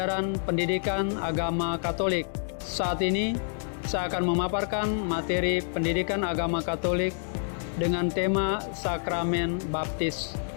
Pendidikan Agama Katolik. Saat ini saya akan memaparkan materi Pendidikan Agama Katolik dengan tema Sakramen Baptis.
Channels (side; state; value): right; silent; 59 dB below the other